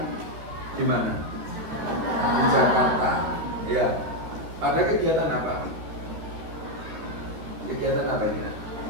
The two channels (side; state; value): left; late; 13 ms